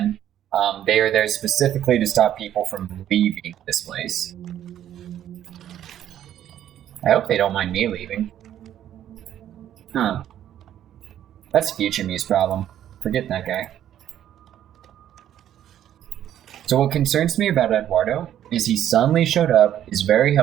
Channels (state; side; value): quieter; left; 11.1 dB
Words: They are there specifically to stop people from leaving this place. I hope they don't mind me leaving. Huh. That's future me's problem. Forget that guy. So what concerns me about Eduardo is he suddenly showed up, is very